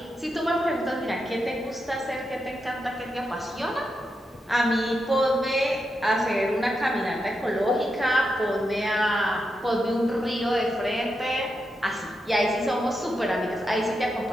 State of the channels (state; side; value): normal; both; correlation 0.86